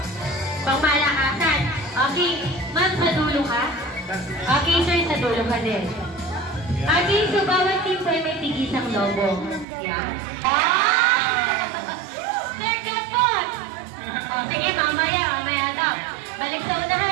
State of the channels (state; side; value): drops out; left; at 9.7 s